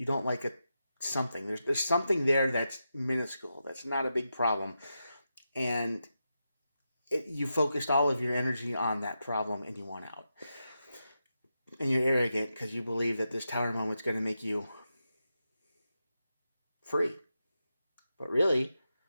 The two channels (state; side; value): inverted; both; correlation -0.88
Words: like something. There's something there that's minuscule, that's not a big problem, and you focused all of your energy on that problem and you want out. And you're arrogant because you believe that this Tower moment's going to make you free. But really,